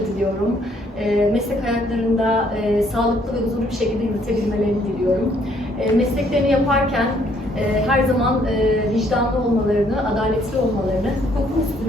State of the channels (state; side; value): normal; both; correlation 0.66